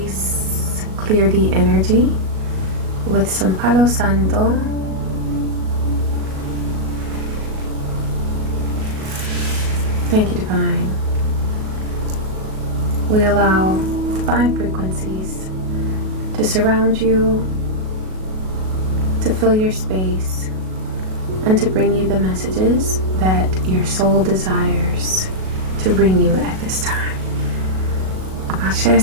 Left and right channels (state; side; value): late; left; 37 ms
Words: clear the energy with some Palo Santo. Thank you, Divine. We allow divine frequencies to surround you, to fill your space, and to bring you the messages that your soul desires to bring you at this time. Ashe,